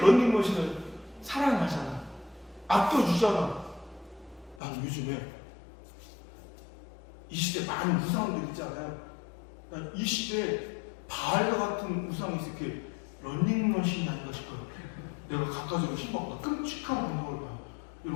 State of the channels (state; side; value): drops out; right; at 4.5 s